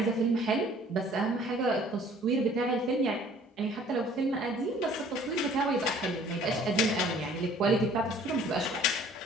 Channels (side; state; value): both; normal; correlation 0.54